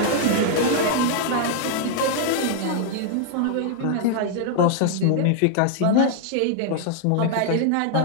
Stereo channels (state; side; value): different; both; correlation -0.01